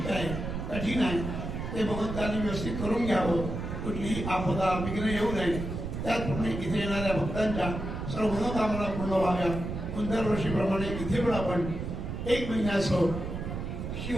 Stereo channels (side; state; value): right; noise; rumble, 5 dB below the sound